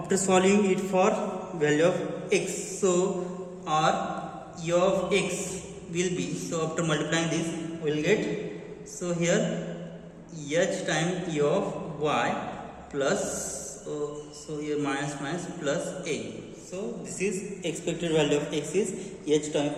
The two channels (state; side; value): identical; both; correlation 1.00